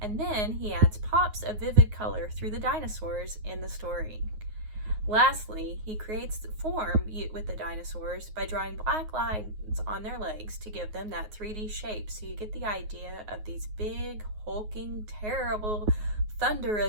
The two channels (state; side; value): late; left; 9.5 ms